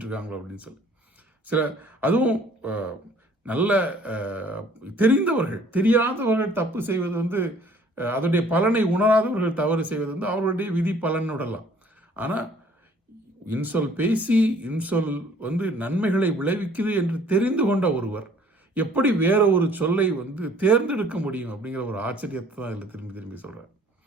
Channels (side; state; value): both; normal; correlation 0.56